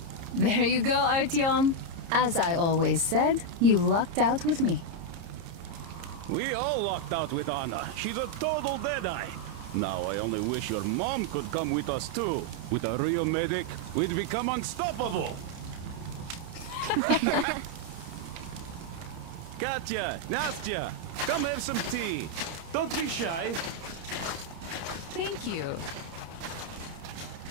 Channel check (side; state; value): left; late; 30 ms